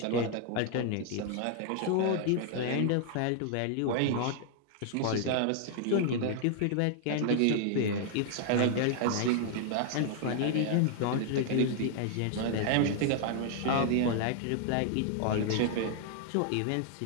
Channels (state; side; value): different; both; correlation 0.00